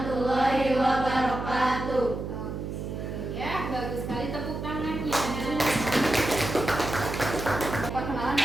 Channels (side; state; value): right; noise; hum, 6 dB below the sound